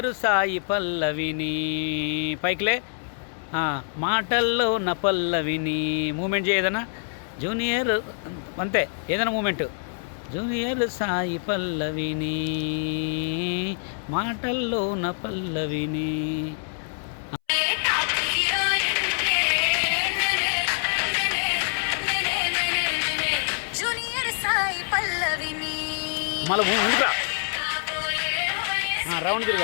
సాయి పల్లవిని పైకిలే. మాటల్లో నా పల్లవిని మూమెంట్ చేయ ఏదైనా జూనియర్, అంతే ఏదైనా మూమెంట్. జూనియర్ సాయి పల్లవిని మాటల్లో నా పల్లవిని. మళ్ళీ ముందుకురా. రౌండ్ తిరుగు,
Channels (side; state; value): right; silent; 61 dB below the other